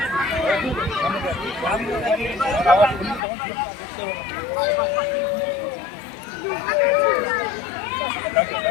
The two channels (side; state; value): right; drops out; at 3.2 s